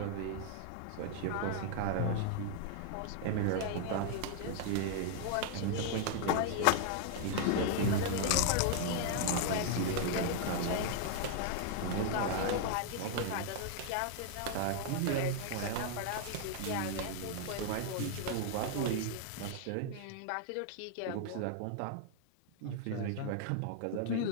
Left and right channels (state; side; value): different; both; correlation 0.00